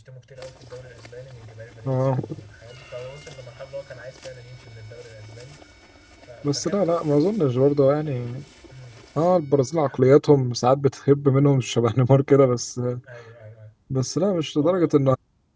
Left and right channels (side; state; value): both; identical; correlation 1.00